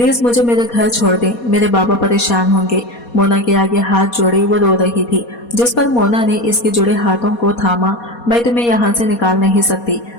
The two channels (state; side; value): late; right; 4.2 ms